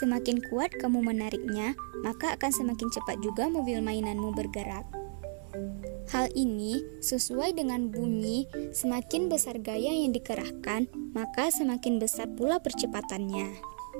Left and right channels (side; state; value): left; silent; digital silence